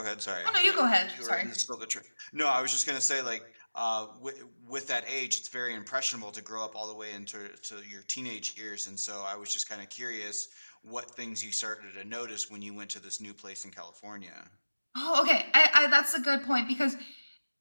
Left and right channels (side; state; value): both; inverted; correlation -1.00